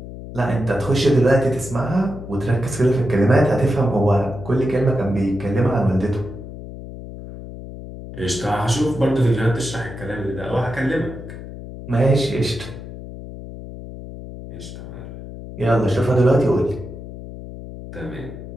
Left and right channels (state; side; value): noise; left; hum, 12 dB below the sound